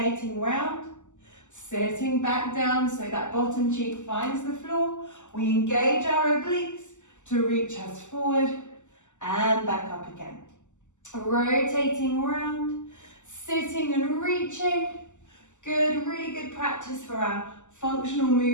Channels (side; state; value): right; late; 0.84 ms